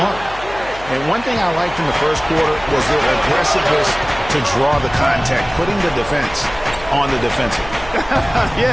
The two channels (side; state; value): left; noise; hum, 17 dB below the sound